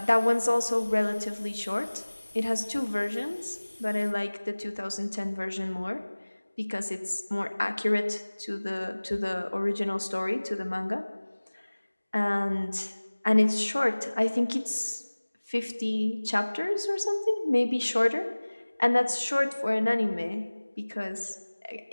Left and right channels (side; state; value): both; inverted; correlation -1.00